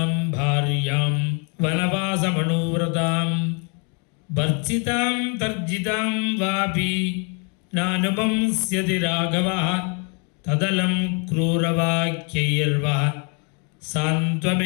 ಭಾರ್ಯಾಂ ವನವಾಸಮಣುವ್ರತಾಂ ಭರ್ಜಿತಾಂ ತರ್ಜಿತಾಂ ವಾಪಿ ನಾನುಪಂಸ್ಯತಿ ರಾಘವಃ ತದಲಂ ಕ್ರೂರವಾಕ್ಯೈರ್ವಾ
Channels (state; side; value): quieter; right; 36.4 dB